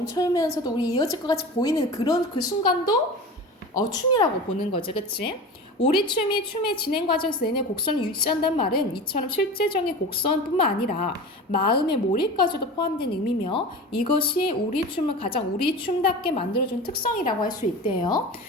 우리 이어질 것 같이 보이는 그런 그 순간도 춤이라고 보는 거죠, 그렇지? 우리 춤이 춤의 진행 과정에서 내내 곡선을 유지한다는 말은 이처럼 실제적인 곡선뿐만 아니라 마음의 몰입까지도 포함된 의미며 이것이 우리 춤을 가장 우리 춤답게 만들어준 특성이라고 할 수 있대요.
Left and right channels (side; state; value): both; normal; correlation 0.32